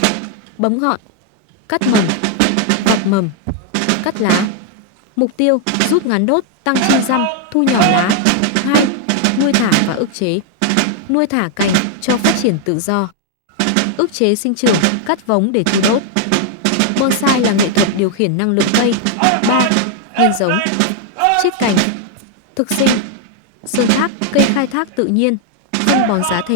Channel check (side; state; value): both; different; correlation 0.00